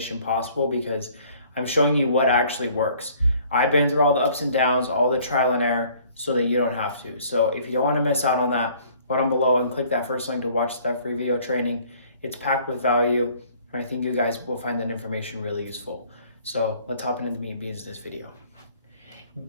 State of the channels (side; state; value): both; inverted; correlation -0.57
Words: possible because I'm showing you what actually works. I've been through all the ups and downs, all the trial and error, so that you don't have to. So if you don't want to miss out on that, go down below and click that first link to watch that free video training. It's packed with value, and I think you guys will find that information really useful. So let's hop into the meat and beans of this video.